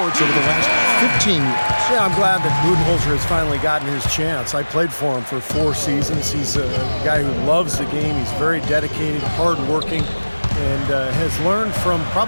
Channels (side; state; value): both; inverted; correlation -1.00